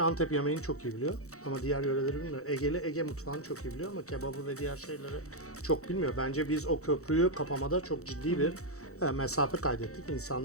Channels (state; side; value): late; right; 0.64 ms